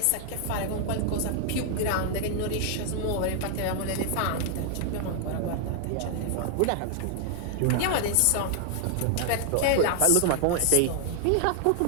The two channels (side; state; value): both; different; correlation 0.00